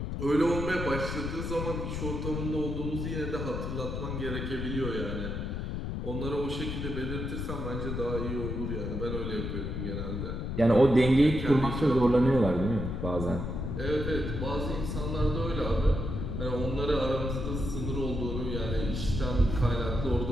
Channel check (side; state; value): left; noise; rumble, 3 dB below the sound